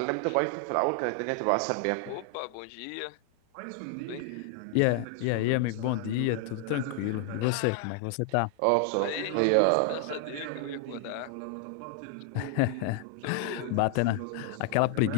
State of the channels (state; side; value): different; both; correlation 0.00